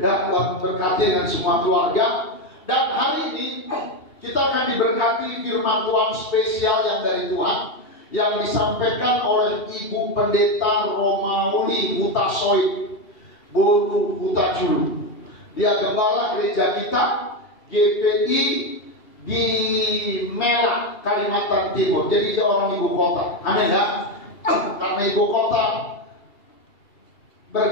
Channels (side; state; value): right; late; 2.8 ms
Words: Ya, Tuhan berkati dengan semua keluarga. Dan hari ini kita akan diberkati firman Tuhan spesial yang dari Tuhan, yang disampaikan oleh Ibu Pendeta Romauli Hutasoid Boru Hutaculu. Dia gembala gereja kita GPI di Melak, Kalimantan Timur. Jadi dia orang ibu kota. Amin ya. Karena ibu kota